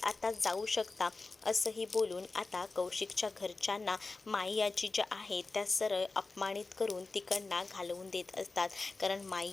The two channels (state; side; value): quieter; right; 3.7 dB